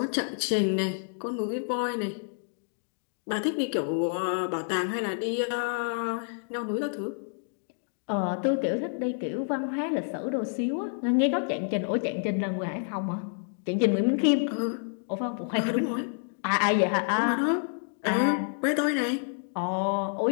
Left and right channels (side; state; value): right; silent; digital silence